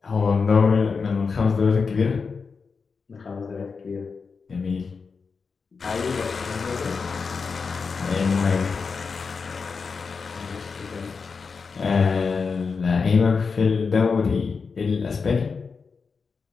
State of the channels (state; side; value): quieter; right; 5.1 dB